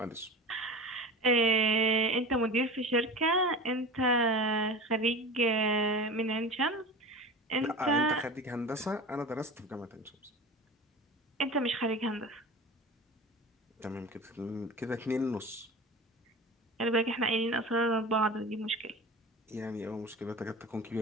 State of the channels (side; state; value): both; normal; correlation 0.33